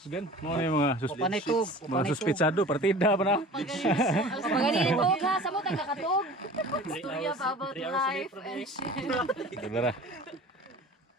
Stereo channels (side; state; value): both; normal; correlation 0.41